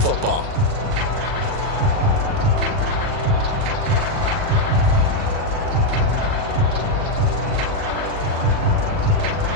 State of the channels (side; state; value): left; late; 39 ms